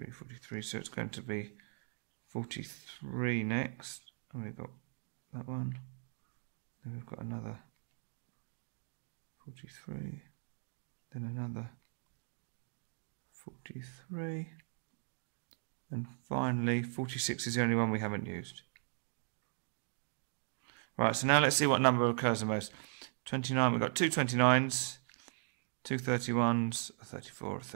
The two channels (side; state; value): left; silent; digital silence